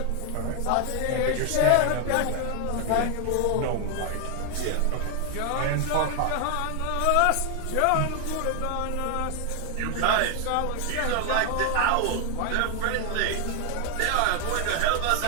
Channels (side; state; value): both; different; correlation 0.01